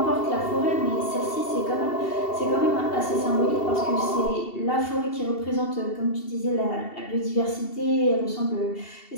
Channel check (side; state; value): right; late; 2.7 ms